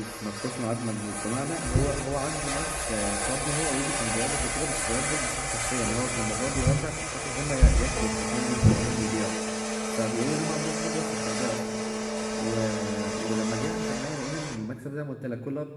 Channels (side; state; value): both; identical; correlation 1.00